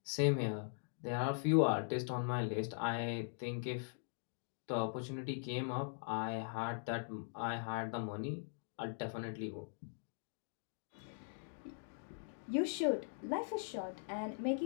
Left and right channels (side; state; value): right; silent; digital silence